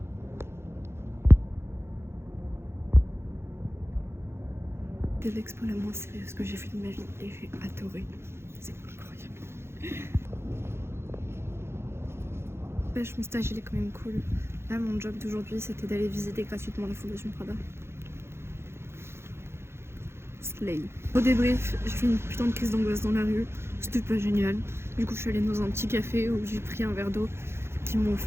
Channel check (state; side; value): late; left; 0.12 ms